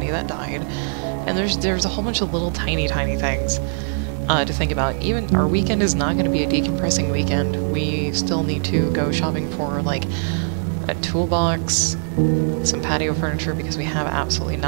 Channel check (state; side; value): silent; left; digital silence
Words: that died. And there's a whole bunch of little tiny things to think about. Even our weekend is not going to be a decompressing weekend. We still need to go shopping for like a toolbox, some patio furniture because we have absolutely